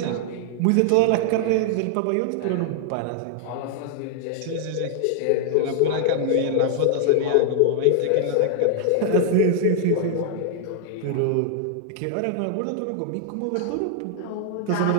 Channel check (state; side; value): different; both; correlation 0.00